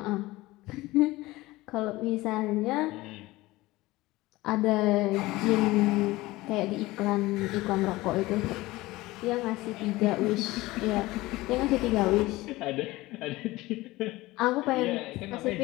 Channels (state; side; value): quieter; right; 19.3 dB